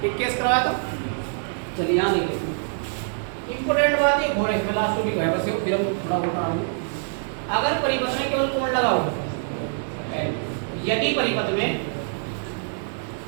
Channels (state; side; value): silent; left; digital silence